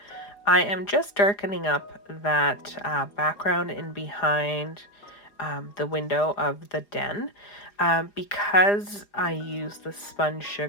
I am just darkening up that background in behind the window of the den. Because I used the sponge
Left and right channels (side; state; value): right; late; 4.9 ms